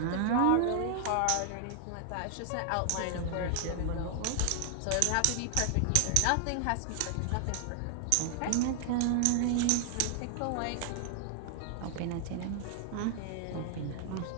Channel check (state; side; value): different; both; correlation 0.00